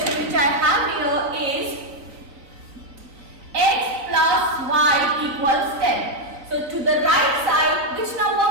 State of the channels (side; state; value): left; late; 3.9 ms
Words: which I have here is x plus y equals 10. So to the right side, which